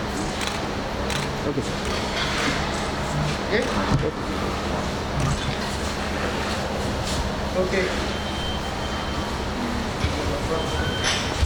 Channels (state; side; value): identical; both; correlation 1.00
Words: okay sir Okay.